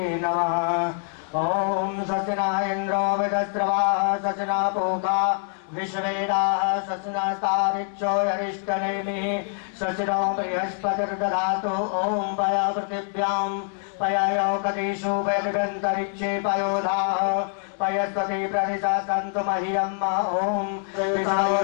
नमः। ओम सचना इंद्रो विदस्रवा सचना पोका विश्वेदाः सचनास्तारिक्षो यरिष्टनेमि सचनो बृहस्पतिर्दधातु। ओम पया पृथिव्यां पयायोकदिषु वैदगन्तरिक्षे पयोधाः पयस्पति प्रदिशा सन्तु मह्यम्। ओम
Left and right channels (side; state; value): right; silent; 56 dB below the other